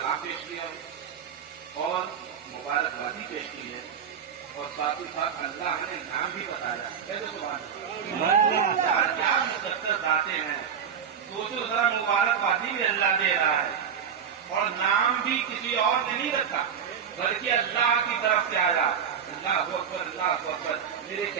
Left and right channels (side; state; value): left; quieter; 7.7 dB